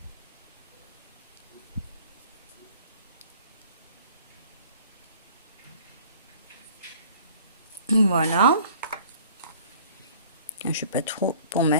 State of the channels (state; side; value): inverted; both; correlation -0.50